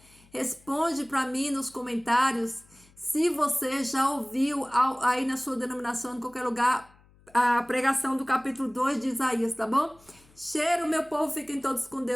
responde para mim nos comentários se você já ouviu aí na sua denominação, em qualquer lugar, a pregação do capítulo 2 de Isaías, tá bom? Cheiro, meu povo, fiquem todos com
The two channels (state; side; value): noise; left; hum, 29 dB below the sound